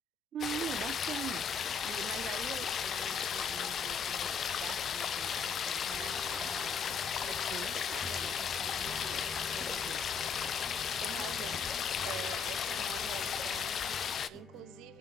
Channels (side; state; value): right; quieter; 5.6 dB